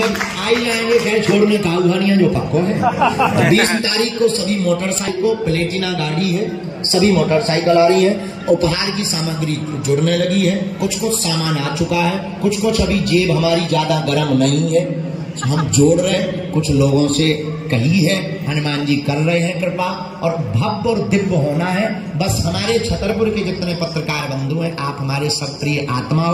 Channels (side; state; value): both; identical; correlation 1.00